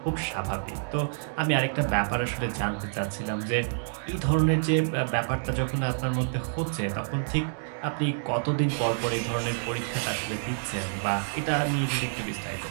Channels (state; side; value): silent; left; digital silence